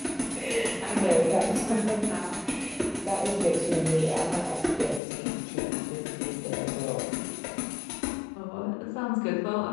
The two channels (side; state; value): right; drops out; at 5.0 s